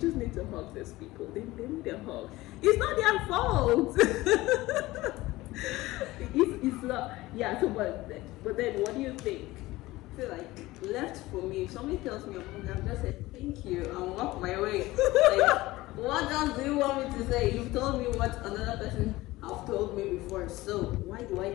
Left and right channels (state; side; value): quieter; right; 18.7 dB